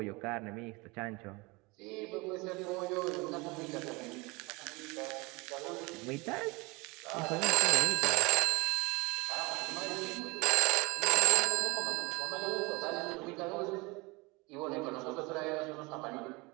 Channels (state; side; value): quieter; left; 25.5 dB